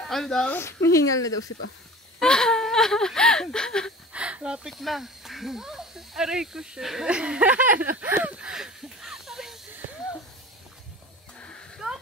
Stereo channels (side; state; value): both; normal; correlation 0.39